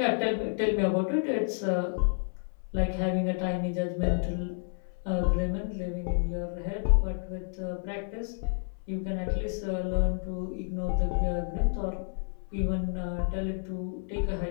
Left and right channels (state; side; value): silent; right; 58 dB below the other